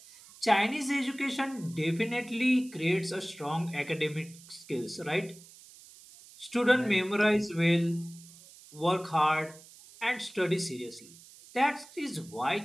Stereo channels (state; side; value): noise; right; hiss, 21 dB below the sound